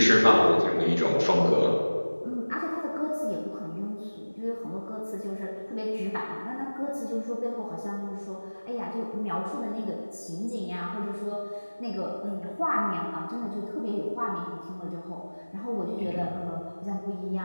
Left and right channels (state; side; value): inverted; both; correlation -1.00